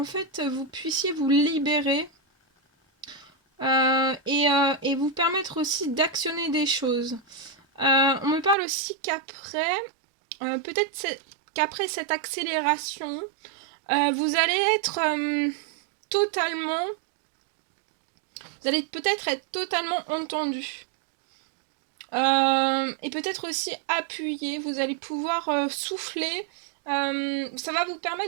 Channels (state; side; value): drops out; left; at 8.6 s